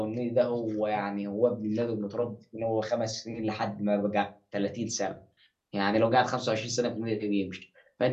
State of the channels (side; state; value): both; identical; correlation 1.00